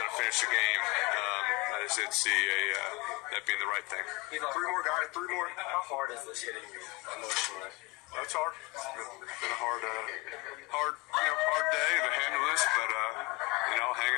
to finish the game. I just didn't see that being the right thing. 3 more, guys. 3 more. How hard is this hitting you emotionally? It's hard. It's been a hard day to handle this, but hang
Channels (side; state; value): right; quieter; 24.2 dB